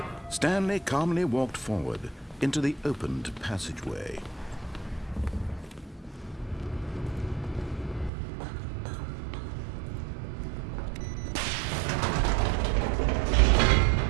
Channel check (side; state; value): left; drops out; at 8.1 s